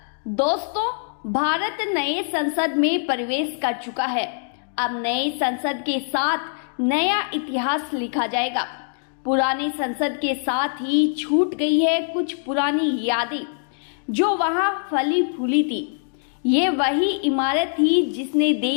दोस्तों, भारत नए संसद में प्रवेश कर चुका है। अब नए संसद के साथ नया इतिहास लिखा जाएगा। पुरानी संसद के साथ ही छूट गई है कुछ पुरानी यादें जो वहां फली फूली थी। ये वही इमारत थी जिसने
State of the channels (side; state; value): right; silent; digital silence